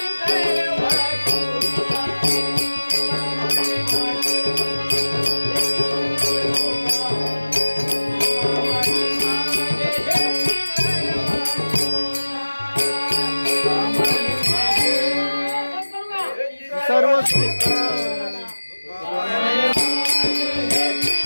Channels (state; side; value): inverted; both; correlation -1.00